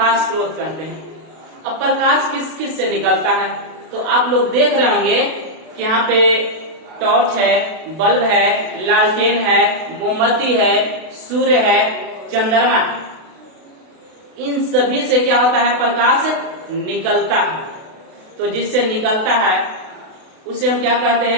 स्रोत कहते हैं। अब प्रकाश किस किस से निकलता है, तो आप लोग देख रहे होंगे कि यहाँ पे टॉर्च है, बल्ब है, लालटेन है, मोमबत्ती है, सूर्य है, चंद्रमा है। इन सभी से क्या होता है, प्रकाश निकलता है। तो जिससे निकलता है उसे हम क्या कहते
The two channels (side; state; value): left; late; 32 ms